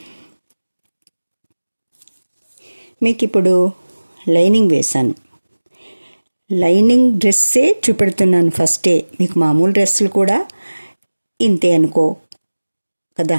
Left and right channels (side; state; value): both; inverted; correlation -1.00